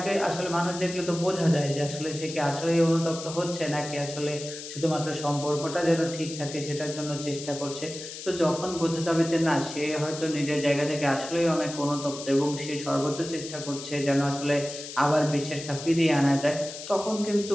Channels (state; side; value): noise; left; hiss, 11 dB below the sound